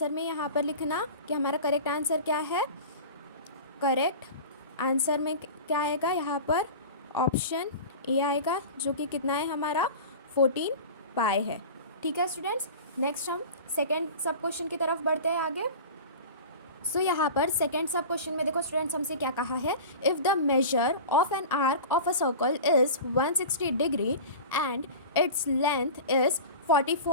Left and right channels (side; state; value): both; inverted; correlation -0.34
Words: में यहाँ पर लिखना कि हमारा करेक्ट आंसर क्या है। करेक्ट आंसर में क्या आएगा यहाँ पर, ऑप्शन ए आएगा, जो कि कितना है हमारा, 14π है। ठीक है स्टूडेंट्स, नेक्स्ट हम सेकेंड सब क्वेश्चन की तरफ बढ़ते हैं आगे। सो यहाँ पर सेकेंड सब क्वेश्चन में देखो स्टूडेंट्स, हमसे क्या कहा है, if the measure of an arc of a circle is 160 degree and its length is